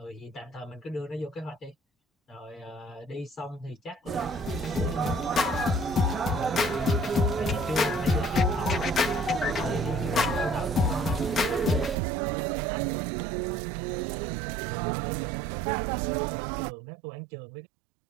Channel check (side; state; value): left; drops out; at 12.0 s